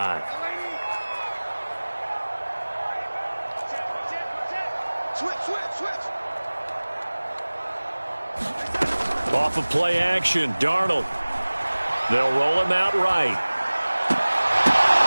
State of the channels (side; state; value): both; inverted; correlation -1.00